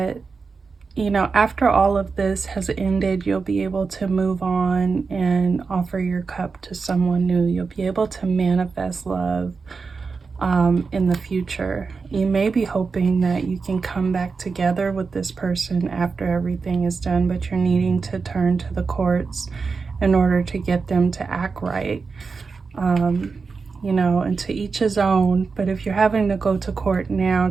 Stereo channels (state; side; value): quieter; left; 4.8 dB